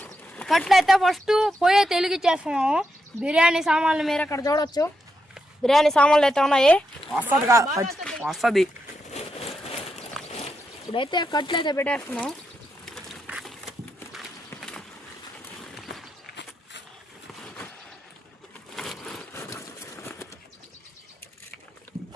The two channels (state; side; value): normal; both; correlation 0.84